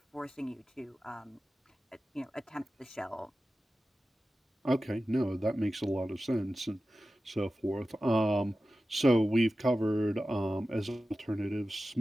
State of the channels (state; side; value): normal; both; correlation 0.94